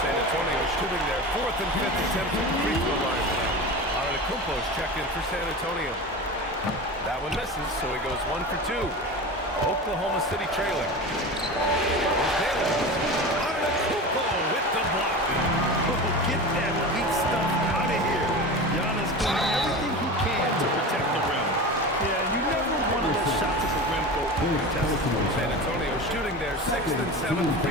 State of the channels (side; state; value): both; normal; correlation 0.29